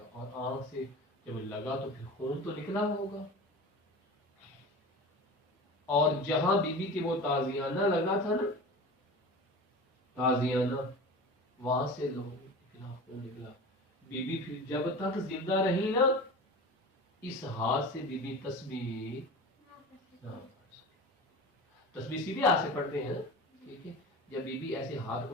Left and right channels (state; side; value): normal; both; correlation 0.33